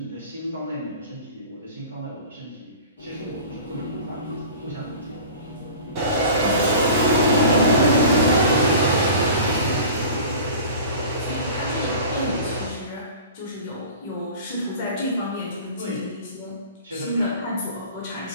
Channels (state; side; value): inverted; both; correlation -0.39